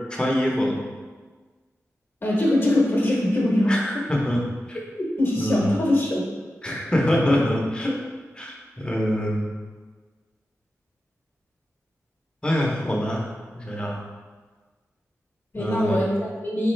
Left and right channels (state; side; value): normal; both; correlation 0.92